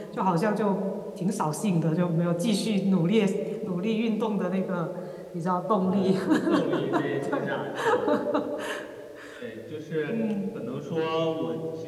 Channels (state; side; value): identical; both; correlation 1.00